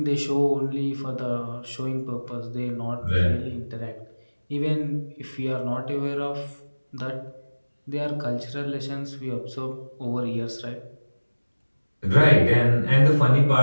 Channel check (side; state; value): both; inverted; correlation -1.00